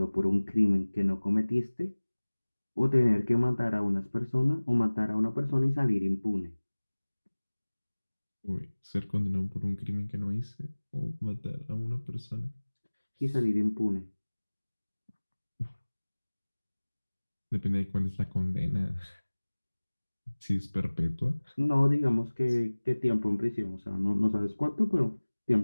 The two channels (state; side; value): inverted; both; correlation -1.00